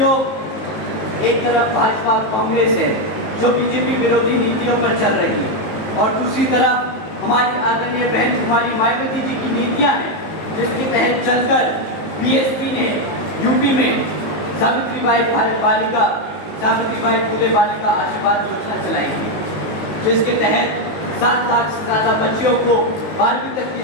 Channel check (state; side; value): late; right; 19 ms